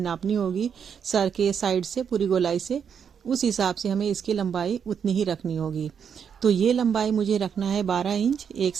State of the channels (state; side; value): quieter; left; 7.4 dB